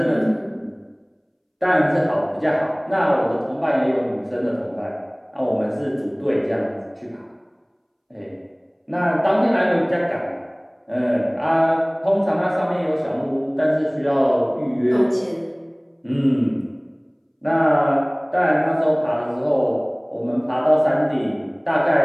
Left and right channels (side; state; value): both; identical; correlation 1.00